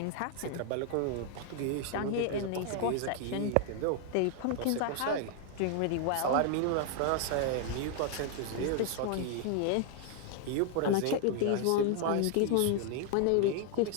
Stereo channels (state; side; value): different; both; correlation 0.00